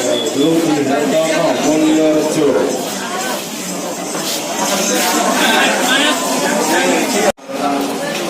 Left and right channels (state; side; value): identical; both; correlation 1.00